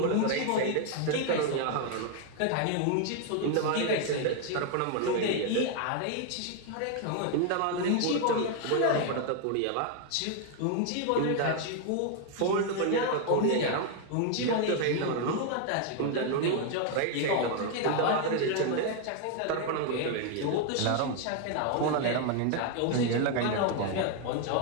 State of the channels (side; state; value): both; different; correlation 0.00